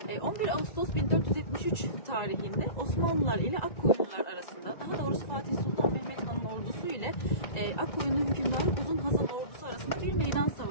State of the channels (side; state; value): right; late; 1.9 ms